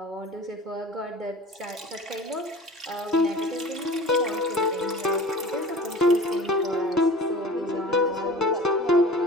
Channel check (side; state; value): both; normal; correlation 0.40